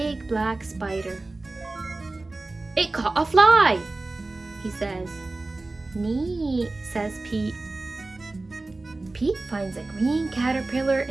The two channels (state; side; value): quieter; left; 3.2 dB